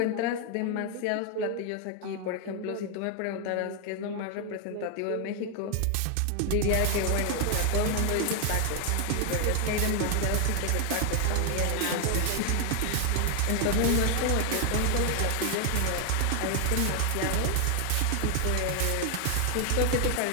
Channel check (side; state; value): both; different; correlation 0.00